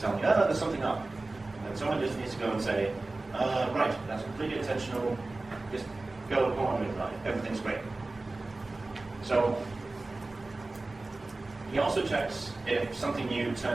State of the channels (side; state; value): left; quieter; 3.1 dB